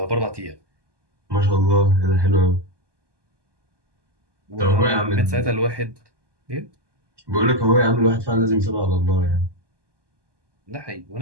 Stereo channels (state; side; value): late; left; 1.2 ms